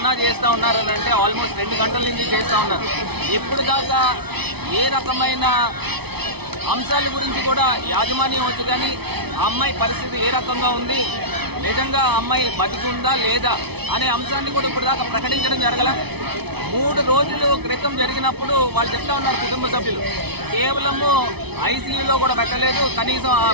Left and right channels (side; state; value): left; late; 0.98 ms